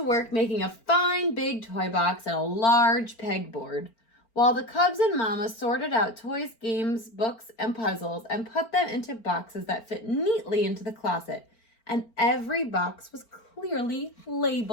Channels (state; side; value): late; right; 4.4 ms